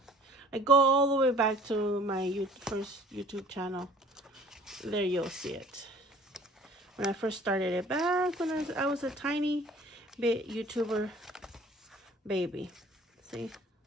I go all the way back to my first YouTube channel. There you'll see it. When I first started it back when I was a tiny bit YouTuber baby. See?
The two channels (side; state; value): both; normal; correlation 0.51